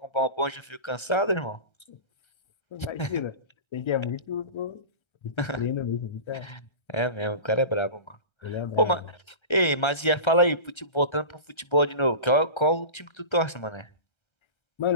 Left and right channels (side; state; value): right; late; 1.3 ms